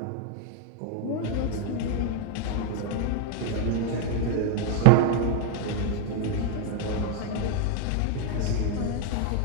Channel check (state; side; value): different; both; correlation 0.01